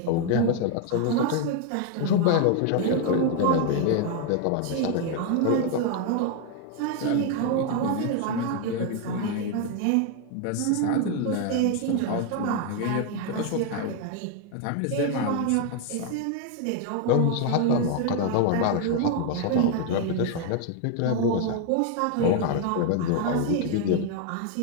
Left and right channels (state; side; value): different; both; correlation 0.01